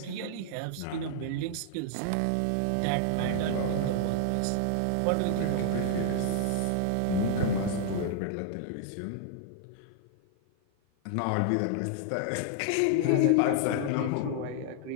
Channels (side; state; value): both; different; correlation 0.00